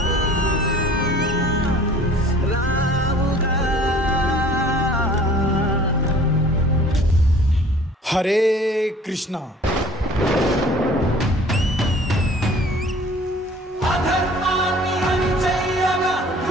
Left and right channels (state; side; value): normal; both; correlation 0.50